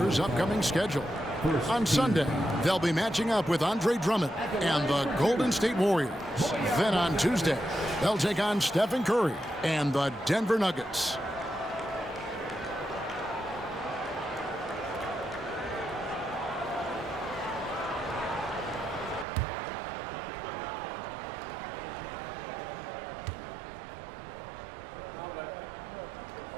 upcoming schedule. On Sunday, they'll be matching up with Andre Drummond and the Golden State Warriors. Then on Tuesday, they'll take on Stephen Curry and the Denver Nuggets.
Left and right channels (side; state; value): left; drops out; at 19.2 s